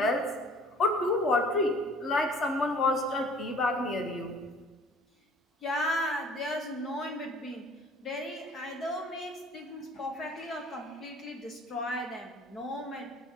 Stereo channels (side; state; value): both; normal; correlation 0.51